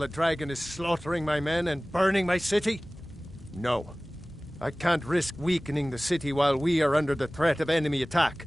dragon is slaughtering my men and burning my city? No. I can't risk weakening the city while we are under the threat of enemy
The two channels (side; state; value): both; normal; correlation 0.98